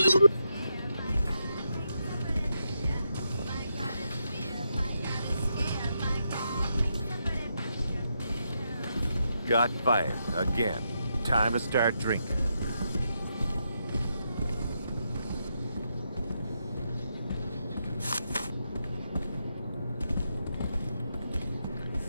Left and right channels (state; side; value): inverted; both; correlation -0.82